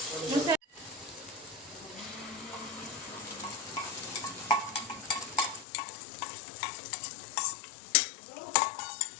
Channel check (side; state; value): right; drops out; at 5.7 s